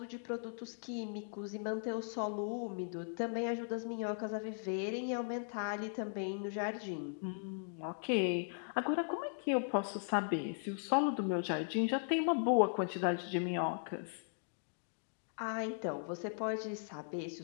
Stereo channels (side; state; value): right; silent; digital silence